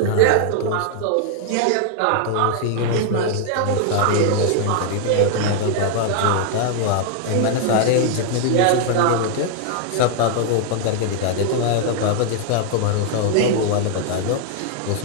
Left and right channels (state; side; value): different; both; correlation 0.00